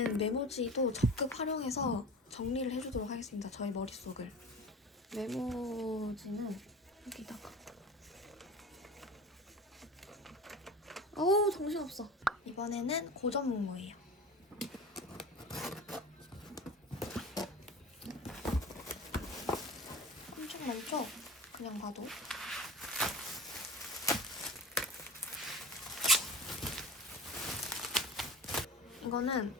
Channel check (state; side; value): normal; both; correlation 0.35